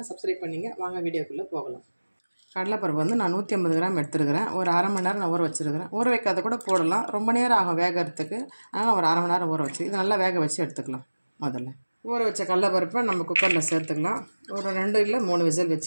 சப்ஸ்கிரைப் பண்ணிங்க. வாங்க வீடியோக்குள்ளே போகலாம். கடலைப்பருப்பு வந்து நான் 150 கிராம் எடுத்துருக்கிறேன். ஒரு அரை மணி நேரம் நான் ஊற வச்சுருக்கிறேன். ஊற வைக்காத கூட போடலாம், ரொம்ப நேரம் ஆகும் வேகிறதுக்கு. ஆனால் ஒரு அரை மணி நேரம் ஊற வச்சு இது நல்லா வேக வச்சு எடுத்துக்கலாம். முதல்ல ஊற வச்ச கடலைப்பருப்பை நம்ம குக்கரில் சேர்த்துக்கலாம். ஒரு 2 இல்லை 3 விசில்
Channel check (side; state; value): both; inverted; correlation -1.00